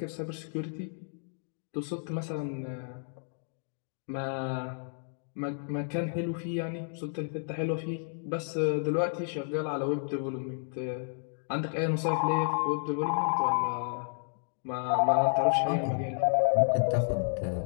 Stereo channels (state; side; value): silent; right; digital silence